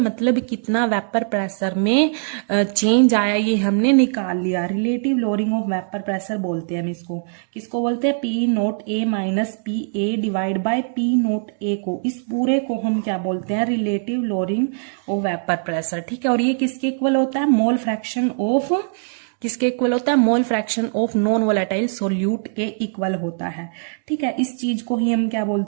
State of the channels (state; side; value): silent; left; digital silence